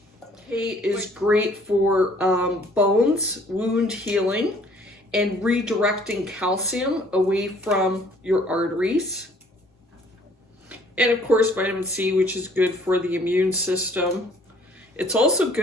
K is great for bones, wound healing, and redirecting calcium away from your arteries. And of course, vitamin C, which is good for the immune system. It's also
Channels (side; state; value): both; normal; correlation 0.58